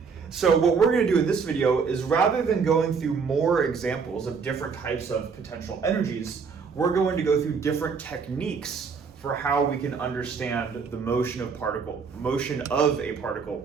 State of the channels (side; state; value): left; quieter; 5.5 dB